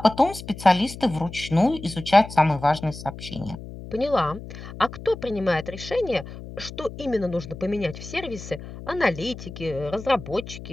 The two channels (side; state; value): left; noise; hum, 13 dB below the sound